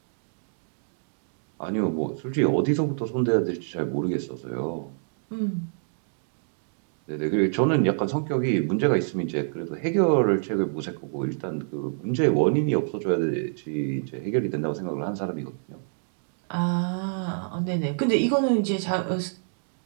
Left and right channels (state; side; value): silent; left; digital silence